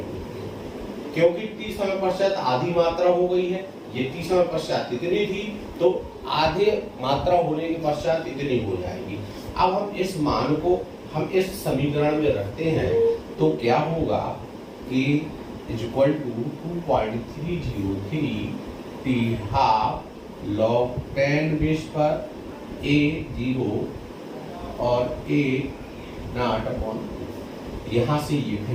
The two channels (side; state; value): both; identical; correlation 1.00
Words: क्योंकि t समय पश्चात आधी मात्रा हो गई है। ये t समय पश्चात इतनी थी तो आधे मात्रा होने के पश्चात इतनी हो जाएगी। अब हम इस मान को हम इस समीकरण में रखते हैं तो क्या होगा कि equal to 2.303 t half log 10 base पर a0 और a0/2। यहाँ से ये